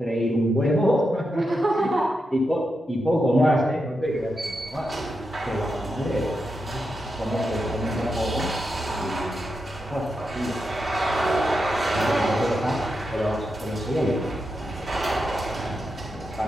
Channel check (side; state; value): both; normal; correlation 0.86